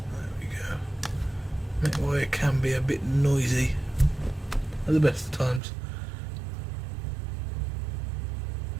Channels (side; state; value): left; drops out; at 5.6 s